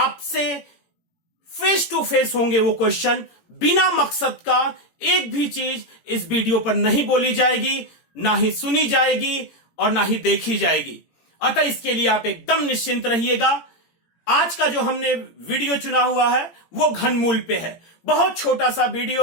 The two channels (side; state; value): right; late; 18 ms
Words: फेस टू फेस होंगे। वो क्वेश्चन बिना मकसद का एक भी चीज इस वीडियो पर नहीं बोली जाएगी, ना ही सुनी जाएगी और ना ही देखी जाएगी। अतः इसके लिए आप एकदम निश्चिंत रहिएगा। आज का जो हमने वीडियो चुना हुआ है वो घनमूल पे है। बहुत छोटा सा